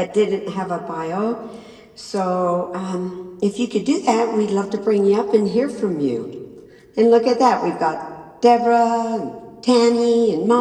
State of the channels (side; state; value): both; identical; correlation 1.00